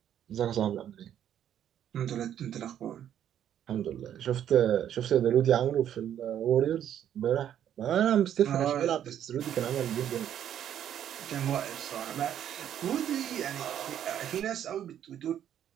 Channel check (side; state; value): left; quieter; 10.2 dB